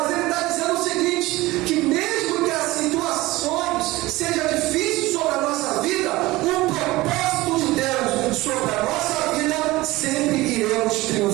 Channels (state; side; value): quieter; left; 19.5 dB